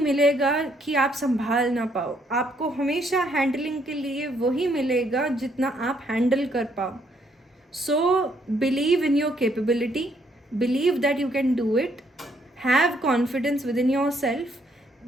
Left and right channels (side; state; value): both; normal; correlation 0.70